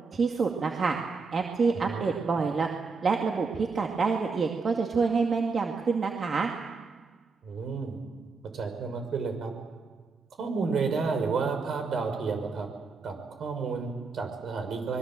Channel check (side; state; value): left; quieter; 4.5 dB